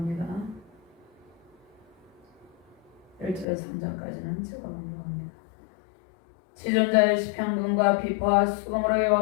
1절에서 3절까지는 제가 공부합니다. 지존자의 시편군과 비파와 수금으로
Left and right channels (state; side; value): drops out; right; at 3.5 s